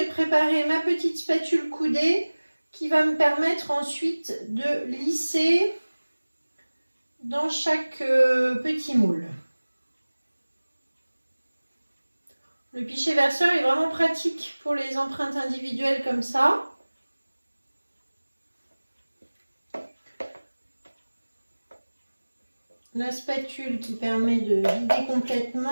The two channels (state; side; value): inverted; both; correlation -1.00